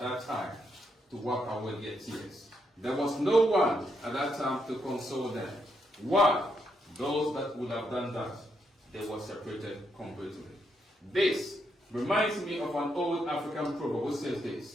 time to wipe away their tears. There was no one at that time to console them. Why? Those that would have done that, they were separated completely. This reminds me of an old African proverb which says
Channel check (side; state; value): both; normal; correlation 0.79